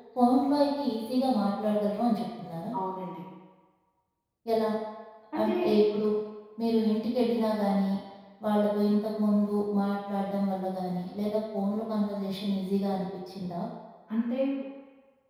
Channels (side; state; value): both; identical; correlation 1.00